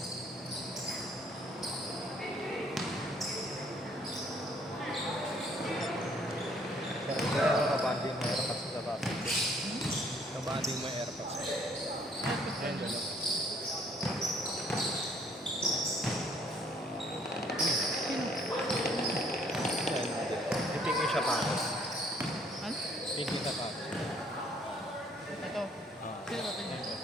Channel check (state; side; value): normal; both; correlation 0.62